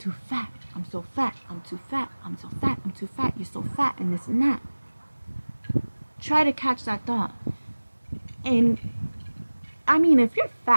too fat. I'm so fat. I'm too fat. I'm so fat. I'm too fat. You're so fat, and this and that. Try to catch that thought. And I mean, if you're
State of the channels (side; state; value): both; inverted; correlation -1.00